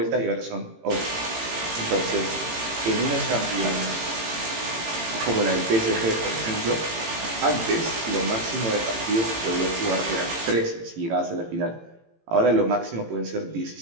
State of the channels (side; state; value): left; late; 18 ms